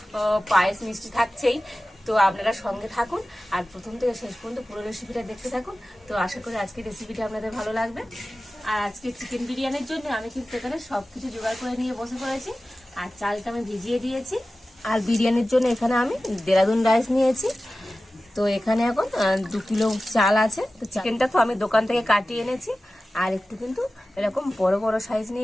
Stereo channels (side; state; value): both; normal; correlation 0.96